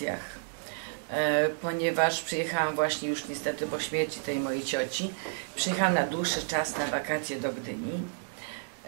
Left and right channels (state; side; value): silent; left; digital silence